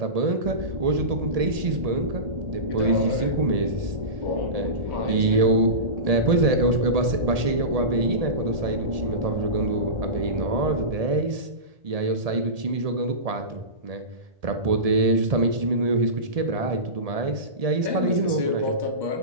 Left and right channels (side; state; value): left; late; 1.7 ms